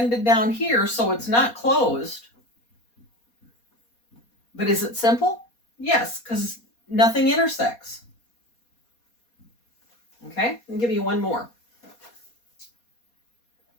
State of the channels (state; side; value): late; right; 4.2 ms